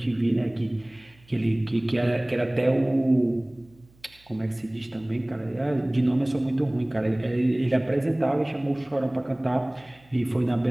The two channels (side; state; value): right; noise; hum, 29 dB below the sound